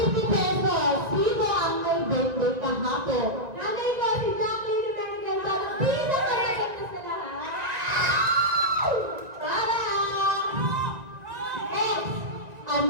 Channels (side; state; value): left; late; 2.0 ms